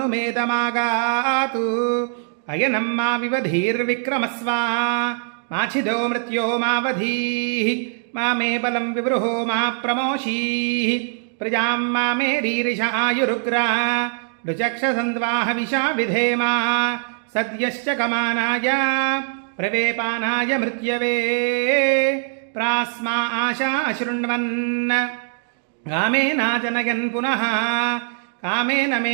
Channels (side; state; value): left; silent; 55 dB below the other